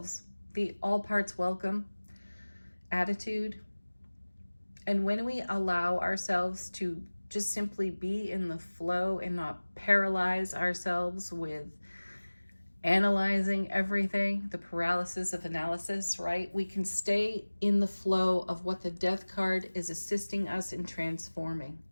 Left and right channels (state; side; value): inverted; both; correlation -1.00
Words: the all parts welcome attitude, and when we allow ourselves to just simply be in the flow and not paralyze ourselves with analyzing everything, the paralysis of analysis, right? We can stay in the flow of what the Death card is assisting us in transforming.